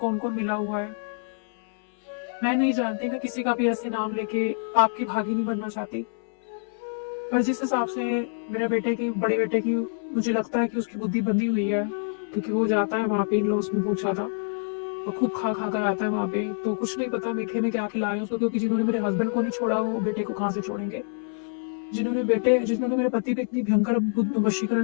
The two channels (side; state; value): right; silent; 61 dB below the other